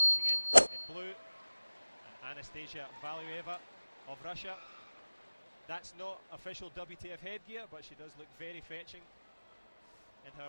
in blue. And Anastasia Valueva of Russia. That's not official WTF headgear, but she does look very fetching in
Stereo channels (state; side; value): inverted; both; correlation -1.00